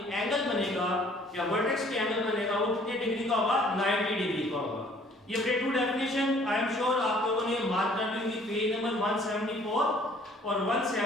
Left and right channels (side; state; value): both; normal; correlation 0.57